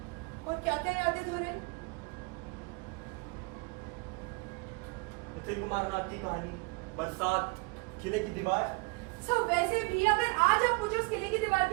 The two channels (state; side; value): quieter; left; 28.9 dB